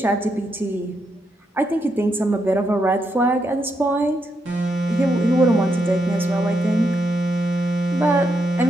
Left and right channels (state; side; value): normal; both; correlation 0.80